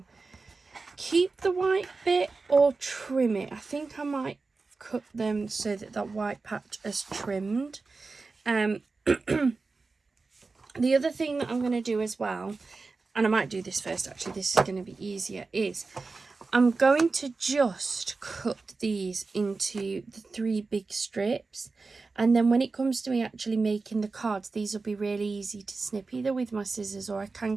keep the white bit or trim it. I think I might cut them so that that white patch is trimmed. The other thing that I'm going to do as well, and I might do this first actually, this is going to be easier, is I'm going to just cut these into the 3 big strips, and then when it comes to me actually making the cards, these will be really easy to snip either with my scissors, or I can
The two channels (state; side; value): quieter; left; 4.0 dB